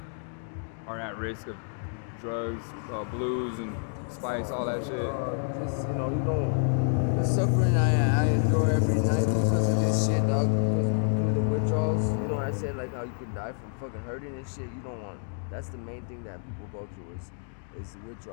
are at risk of drugs, blues, and spice, all that shit? Just you don't. The suffering I endure every night because of this shit, dog. Because of the withdrawals. You know what I said, like how you could die from fucking hurting and shit. You don't want. That's the main thing that people go through is the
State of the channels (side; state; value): right; silent; 59 dB below the other